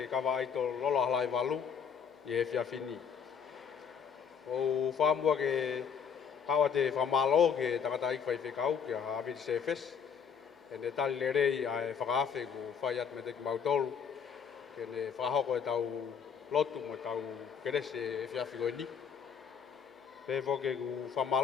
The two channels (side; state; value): right; quieter; 7.0 dB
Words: e kawa aito lolo halai walu i e fiafini. O whamua ke kawa te whamalo ke takata ikwai whekau ke hawiti sefes. E ne tali le rei a e whakaafe ko whai at me teki mautolu. Ke ne whahoko e tau lotu mo tau kerese e fiafi koe ni. Pe whoke ku